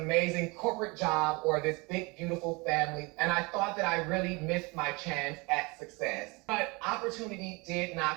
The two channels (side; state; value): left; quieter; 27.1 dB